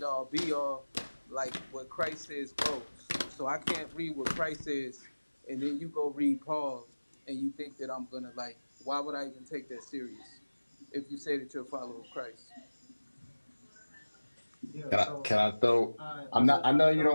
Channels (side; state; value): both; inverted; correlation -1.00